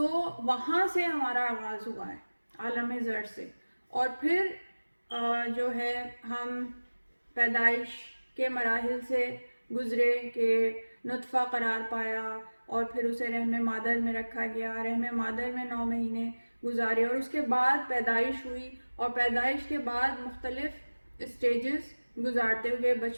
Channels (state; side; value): inverted; both; correlation -1.00